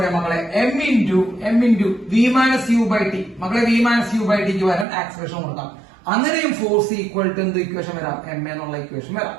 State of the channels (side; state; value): left; drops out; at 4.9 s